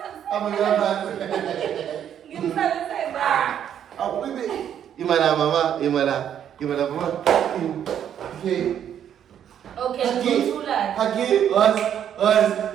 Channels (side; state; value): left; quieter; 9.5 dB